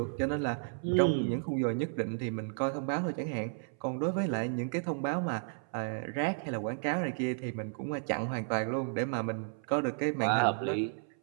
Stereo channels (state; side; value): silent; left; 56 dB below the other